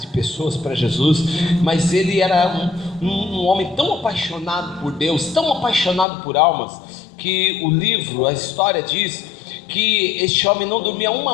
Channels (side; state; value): right; drops out; at 6.1 s